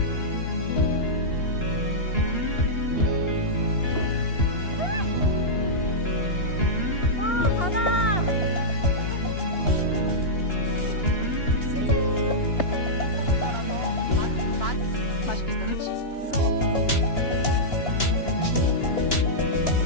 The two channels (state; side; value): late; right; 2.9 ms